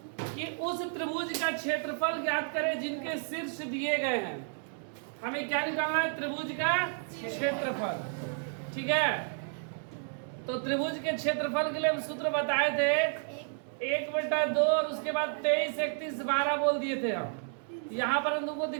कि उस त्रिभुज का क्षेत्रफल ज्ञात करें जिनके शीर्ष दिए गए हैं। हमें क्या निकालना है? त्रिभुज का क्षेत्रफल। ठीक है, तो त्रिभुज के क्षेत्रफल के लिए हम सूत्र बताए थे 1/2 और उसके बाद 23, 31, 12 बोल दिए थे हम। यहाँ पर हम तुमको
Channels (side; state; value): left; silent; 57 dB below the other